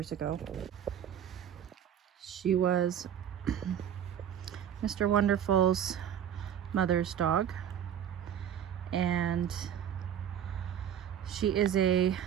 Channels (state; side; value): quieter; left; 9.5 dB